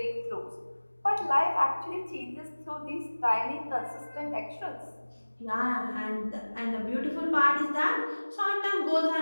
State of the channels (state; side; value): inverted; both; correlation -1.00